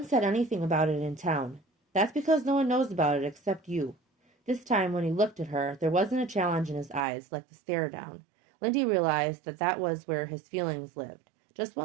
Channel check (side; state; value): left; drops out; at 7.0 s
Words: said anything about it in town. That's because no one knows about it except you. This time, when he looked at her, there wasn't a challenge in his eyes, like the stare down. Lindy realized that that was where his feelings lived. Just